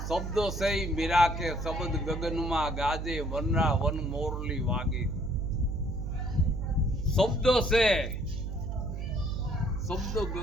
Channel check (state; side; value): noise; right; hum, 4 dB below the sound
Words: શબ્દો છે ઈ મીરા કે શબ્દ ગગનમાં ગાજે વનરા વન મોરલી વાગે. શબ્દો છે શબ્દ